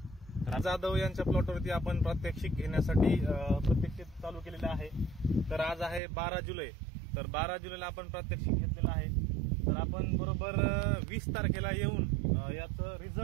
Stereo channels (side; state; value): left; drops out; at 6.0 s